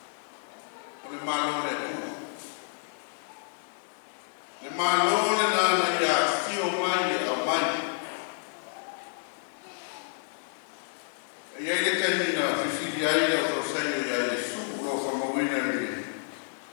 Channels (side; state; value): right; silent; digital silence